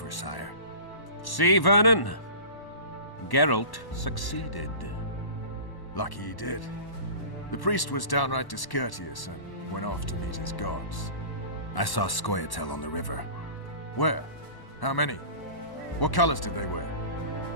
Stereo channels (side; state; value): right; late; 1.1 ms